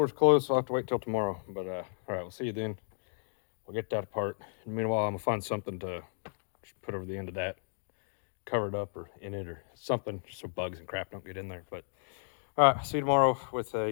closed, so I'll have to wait till tomorrow. But all right, we'll see you then. We'll get that apart. And meanwhile, I'm gonna find something to put over the end of that, cover it up or in it or something, so bugs and crap don't get in there. But all right, see you tomorrow with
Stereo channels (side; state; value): right; silent; digital silence